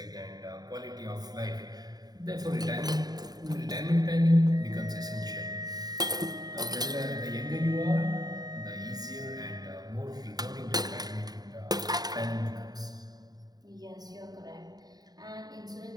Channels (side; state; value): left; late; 0.19 ms